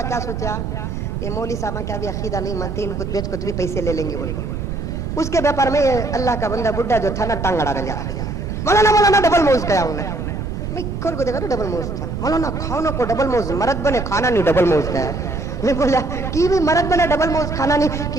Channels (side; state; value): right; noise; rumble, 4 dB below the sound